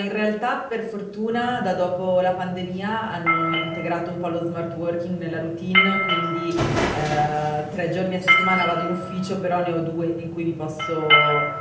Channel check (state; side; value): identical; both; correlation 1.00